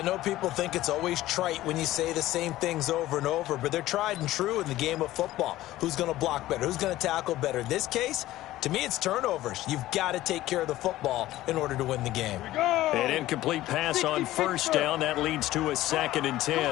know people think it's always trite when you say the same things over and over, but they're tried and true in the game of football. Who's going to block better? Who's going to tackle better? In this case, to me, it's turnovers. You've got to take care of the football in order to win the game. An incomplete pass on first down. That leads to a 2nd and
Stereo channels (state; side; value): quieter; right; 15.6 dB